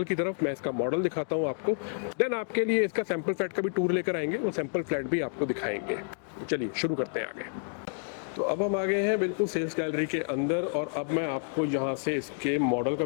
की तरफ, मैं इसका मॉडल दिखाता हूँ आपको, देन आपके लिए इसका सैंपल फ्लैट का भी टूर लेकर आएंगे, वो सैंपल फ्लैट भी आपको दिखाएंगे। चलिए शुरू करते हैं आगे। तो अब हम आ गए हैं बिल्कुल सेल्स गैलरी के अंदर, और अब मैं आपको यहाँ से इसके मॉडल का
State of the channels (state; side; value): silent; right; digital silence